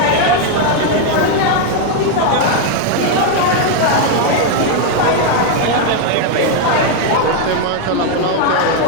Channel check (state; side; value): different; both; correlation 0.01